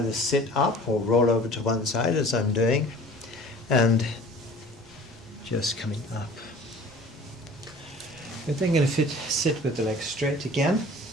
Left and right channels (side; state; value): both; normal; correlation 0.45